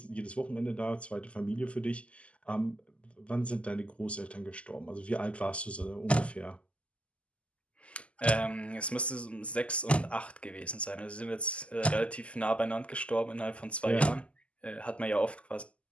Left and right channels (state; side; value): late; right; 0.059 ms